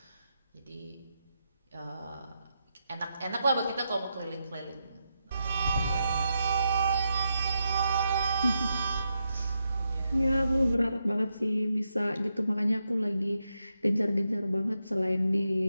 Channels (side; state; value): both; inverted; correlation -0.84